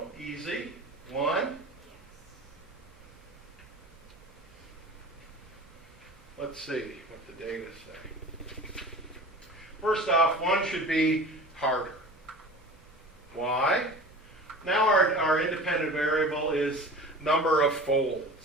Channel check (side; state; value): both; normal; correlation 0.37